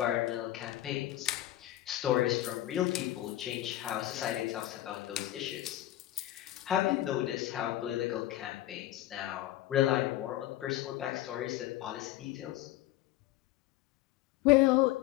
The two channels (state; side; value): quieter; right; 14.6 dB